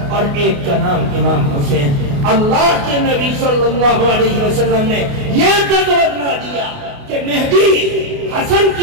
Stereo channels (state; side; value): late; left; 28 ms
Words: اور ایک کا نام امام حسین. اللہ کے نبی صلی اللہ علیہ وسلم نے یہ بتلا دیا کہ مہدی حسن